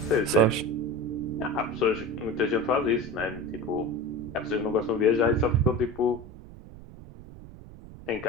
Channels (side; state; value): right; noise; rumble, 16 dB below the sound